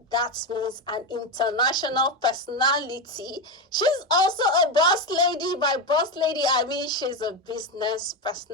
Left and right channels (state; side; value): normal; both; correlation 0.13